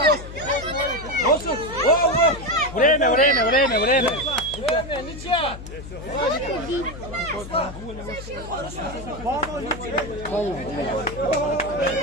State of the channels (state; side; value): noise; left; hum, 12 dB below the sound